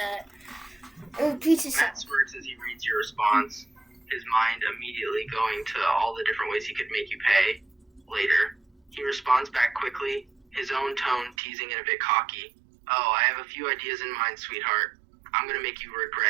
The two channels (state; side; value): drops out; left; at 11.4 s